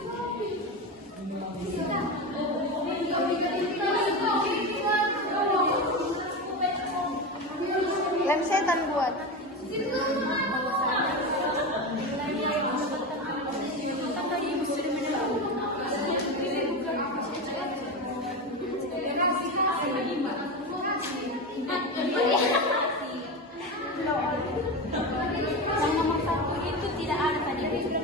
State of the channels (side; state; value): both; normal; correlation 0.20